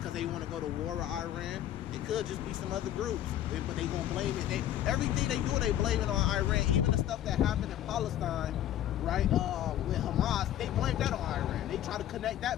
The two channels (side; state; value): right; quieter; 11.9 dB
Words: they want to go to war with Iran. It could just be some other groups, but they gonna blame it. Everything they do, they blame it on Iran. Even the stuff that happened in Palestine, right, with Hamas, they blame that on Iran. They try to connect